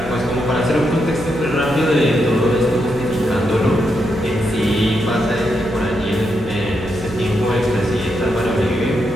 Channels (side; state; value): right; noise; hum, 14 dB below the sound